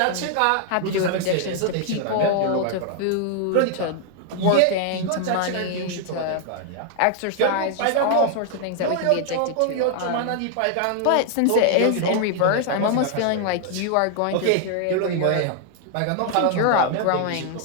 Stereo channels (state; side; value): different; both; correlation 0.00